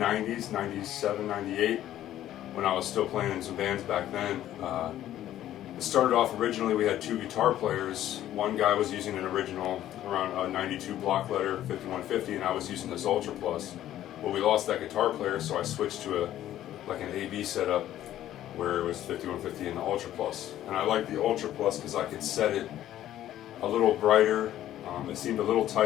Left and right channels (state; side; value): quieter; right; 12.6 dB